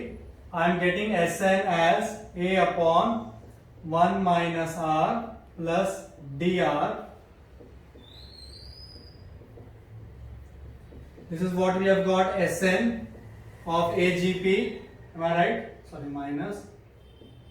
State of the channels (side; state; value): both; identical; correlation 1.00